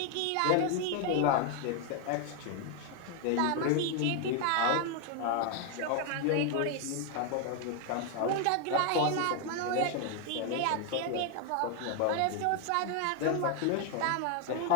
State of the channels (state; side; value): different; both; correlation 0.00